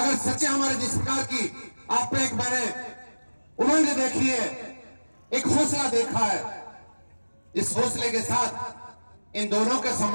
सच्चे हमारे जिस प्रकार की आप पे एक मैंने उमंग देखी है, एक हौसला देखा है, इस हौसले के साथ इन दोनों का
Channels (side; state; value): both; inverted; correlation -1.00